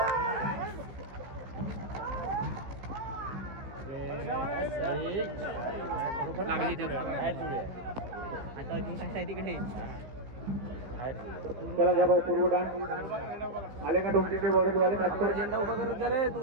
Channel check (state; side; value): late; left; 15 ms